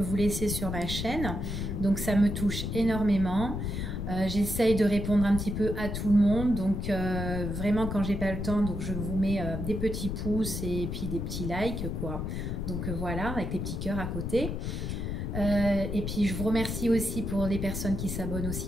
laissez sur ma chaîne, donc ça me touche énormément. J'essaye de répondre un petit peu à tout le monde, donc vraiment quand j'ai pas le temps, donc je vous mets des petits pouces et puis des petits likes quoi. Donc voilà, avec les petits cœurs à côté. Et puis je vous remercie aussi pour les personnes qui s'abonnent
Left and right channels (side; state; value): left; noise; rumble, 3 dB below the sound